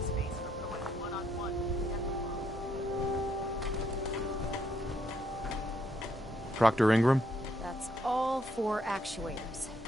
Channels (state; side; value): normal; both; correlation 0.74